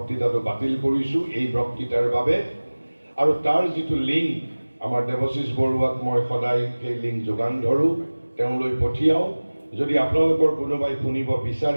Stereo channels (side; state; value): both; inverted; correlation -1.00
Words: বাতিল কৰিছোঁ এই বক্তৃতাৰ বাবে। আৰু তাৰ যিটো লিংক, আমাৰ দেৱশীষ বৰুৱাক মই সদায় সেই লিংক যোগান ধৰোঁ, তেওঁলৈ পঠিয়াওঁ। যদি আপোনালোকৰ কোনোবাই শুনিব